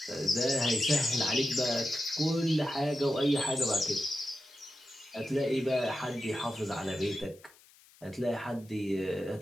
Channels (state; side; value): noise; left; hiss, 26 dB below the sound